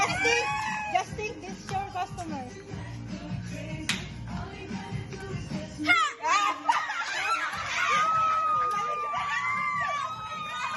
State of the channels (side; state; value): both; identical; correlation 1.00